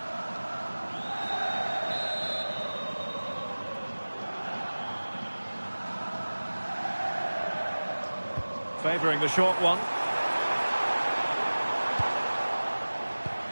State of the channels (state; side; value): inverted; both; correlation -1.00